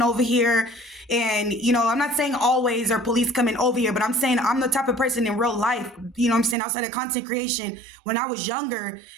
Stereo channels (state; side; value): drops out; left; at 6.6 s